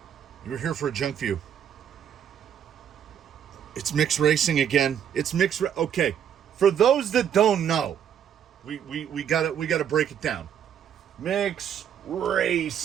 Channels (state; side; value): quieter; left; 8.9 dB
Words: a Junkview. It's mixed racing again. Okay. For those that don't know, we gotta break it down. Mixed